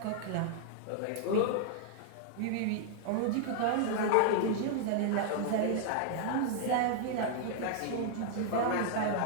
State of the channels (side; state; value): both; different; correlation -0.01